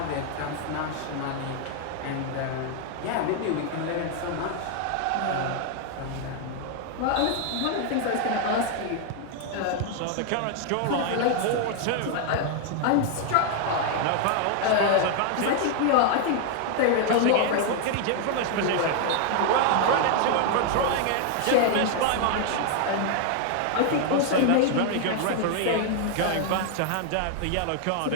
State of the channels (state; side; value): different; both; correlation 0.00